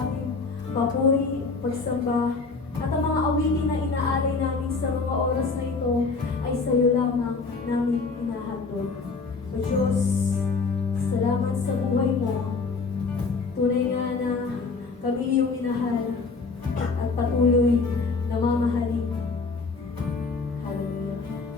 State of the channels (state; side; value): quieter; right; 4.3 dB